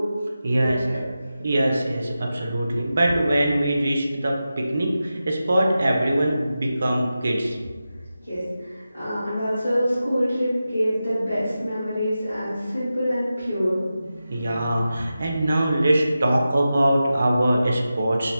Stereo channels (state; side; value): inverted; both; correlation -0.92